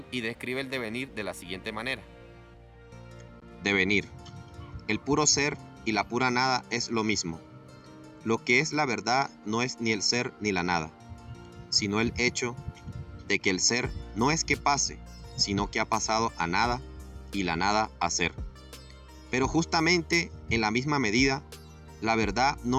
y describe el devenir de la siguiente manera. Devenir. El puro ser y la pura nada es lo mismo. Lo que es la verdad no es ni el ser ni la nada, sino el hecho de que el ser no es que pase, sino que ha pasado a nada y la nada a ser. Pero justamente en la misma medida, la verdad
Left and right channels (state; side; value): identical; both; correlation 1.00